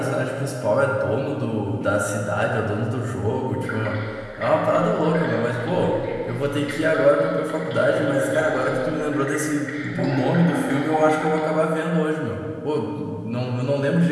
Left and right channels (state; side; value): identical; both; correlation 1.00